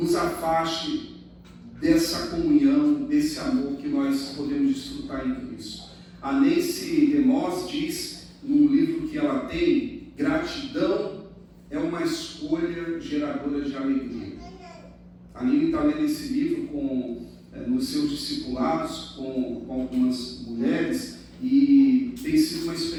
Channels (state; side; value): identical; both; correlation 1.00